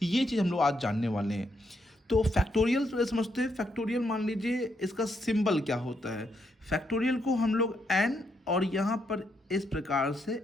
ये चीज़ हम लोग आज जानने वाले हैं। तो फैक्टोरियल तो समझते हैं। फैक्टोरियल मान लीजिए इसका सिंबल क्या होता है। फैक्टोरियल को हम लोग एन और यहाँ पर इस प्रकार से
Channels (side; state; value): both; normal; correlation 0.78